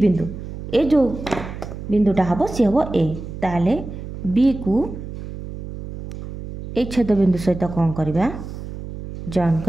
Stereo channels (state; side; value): noise; right; hum, 10 dB below the sound